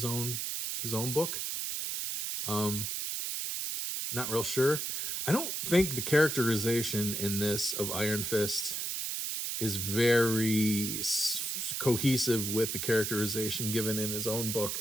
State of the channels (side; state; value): right; noise; hiss, 2 dB below the sound